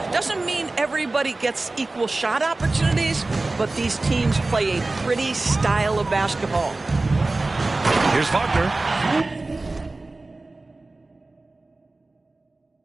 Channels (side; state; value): left; quieter; 3.2 dB